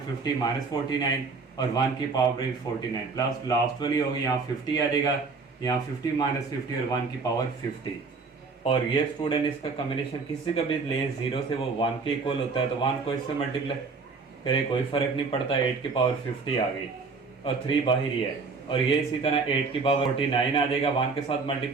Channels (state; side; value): quieter; left; 4.4 dB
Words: 50 -49 और 1 की पावर 49, प्लस लास्ट वाली होगी, यहाँ 50 आ जाएगा, यहाँ 50 -50 और 1 की पावर 50। और ये स्टूडेंट इसका कम्बिनेशन किसी का भी ले 0 से वो 1 के इक्वल होता है, तो 1 को इससे मल्टीप्लाई करे कोई फर्क नहीं पड़ता, 8 की पावर 50 आ गई और 3 बाहर ही है। और ये इसी तरह 8 की पावर 49 आ जाएगा, 1 के साथ